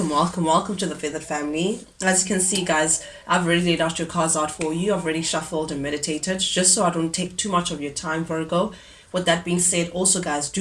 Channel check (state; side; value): identical; both; correlation 1.00